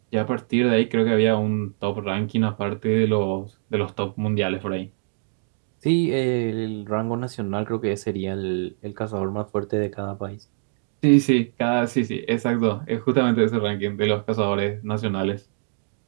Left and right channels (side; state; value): left; silent; digital silence